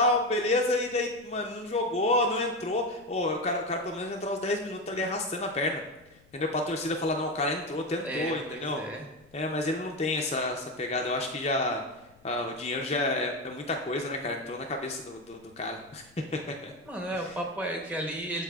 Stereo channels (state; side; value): noise; left; rumble, 29 dB below the sound